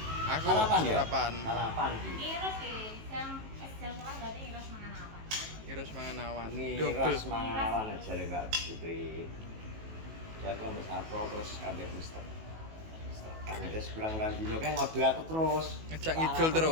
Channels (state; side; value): late; left; 18 ms